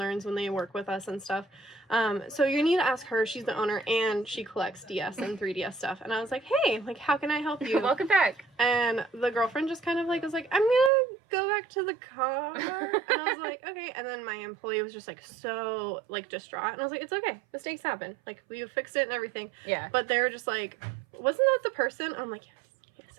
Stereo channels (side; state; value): left; drops out; at 10.9 s